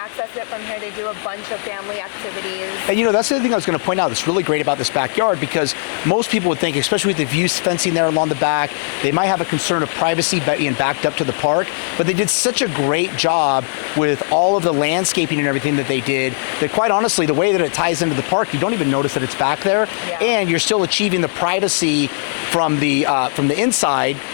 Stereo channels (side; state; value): right; silent; 67 dB below the other